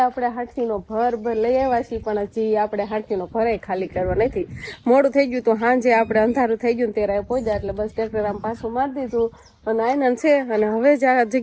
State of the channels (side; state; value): both; identical; correlation 1.00